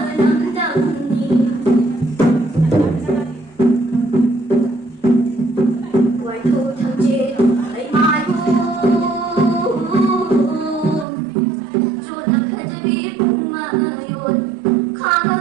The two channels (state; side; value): drops out; left; at 11.1 s